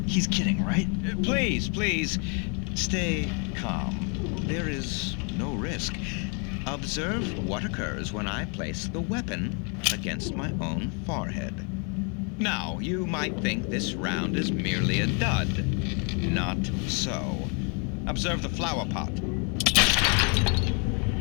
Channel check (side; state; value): right; quieter; 36.9 dB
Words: He's kidding, right? Please, stay calm. There is no risk. Observe what occurs when I place the weapon against my own forehead. Now, you might think this round is merely a dud. Not so. Observe the flower pot.